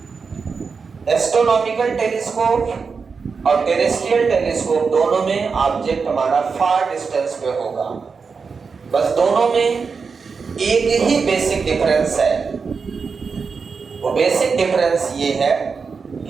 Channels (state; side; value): quieter; left; 5.2 dB